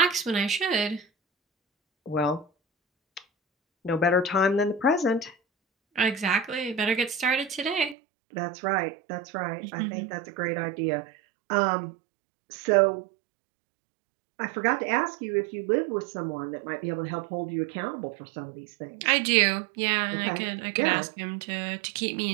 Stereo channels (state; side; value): drops out; left; at 8.0 s